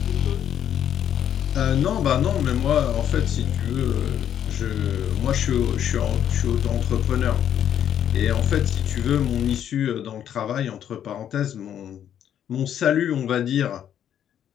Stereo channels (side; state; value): right; quieter; 9.9 dB